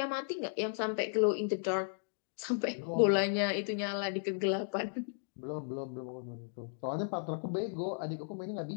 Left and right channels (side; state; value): right; silent; digital silence